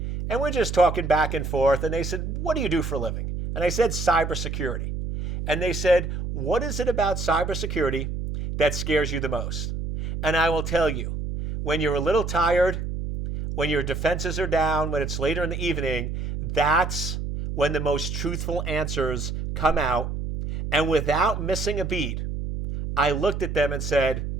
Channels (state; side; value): noise; right; hum, 4 dB below the sound